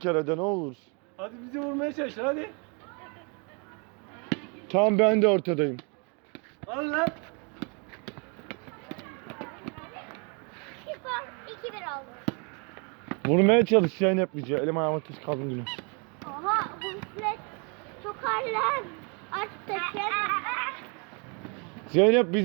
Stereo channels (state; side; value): quieter; left; 34.5 dB